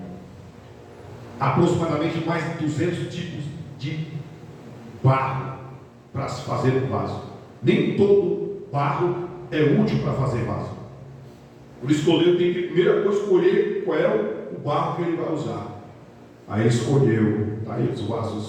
aproximadamente mais de 200 tipos de barro para se fazer um vaso. Nem todo barro é útil para fazer vaso. Por isso que o oleiro tem que, primeira coisa, escolher qual é o barro que ele vai usar. Aí ele escolheu, tá aí os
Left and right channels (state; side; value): identical; both; correlation 1.00